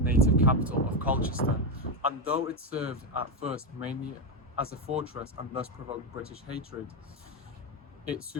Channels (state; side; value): normal; both; correlation 0.08